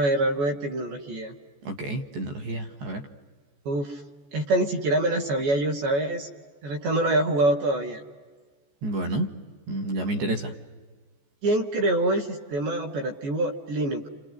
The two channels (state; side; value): late; left; 14 ms